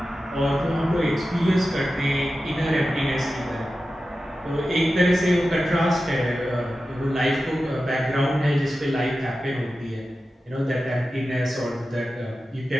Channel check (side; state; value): both; normal; correlation 0.93